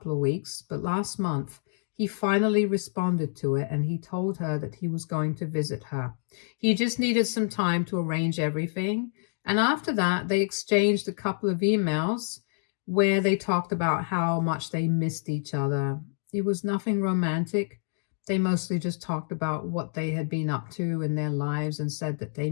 of weeks, but last month he finally responded to it and he told her that he was going to visit her. He just needed some time to arrange everything. And after that, they exchanged a couple of emails where they talked about how much they missed each other. It was nothing romantic. They mostly just talked about what they had been up to in their lives and said that they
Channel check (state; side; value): silent; right; digital silence